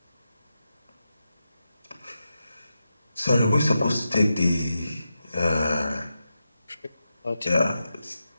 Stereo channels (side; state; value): both; inverted; correlation -0.89